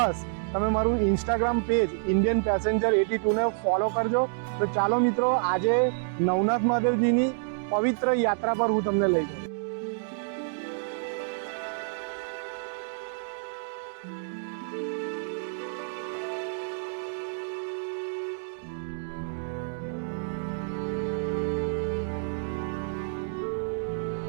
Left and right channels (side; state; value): left; silent; digital silence